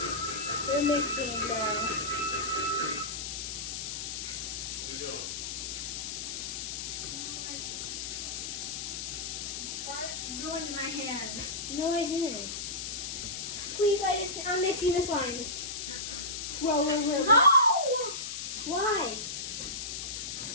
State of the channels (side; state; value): left; noise; hiss, 4 dB below the sound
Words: We're mixing now. Ruined my hands. No, I didn't. Please, I'm mixing the slimes. Roll over. No! Why?